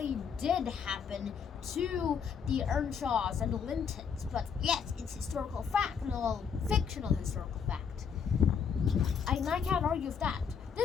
did happen to the Earnshaws and the Lintons. But yes, it's historical fact, no fictional historical fact. I can't argue with that.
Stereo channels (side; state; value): right; quieter; 6.8 dB